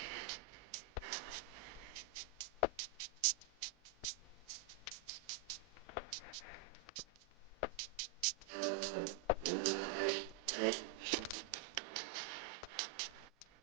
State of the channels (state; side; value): quieter; left; 6.3 dB